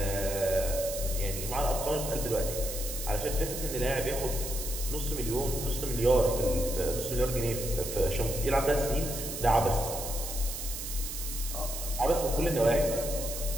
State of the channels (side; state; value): right; noise; hiss, 6 dB below the sound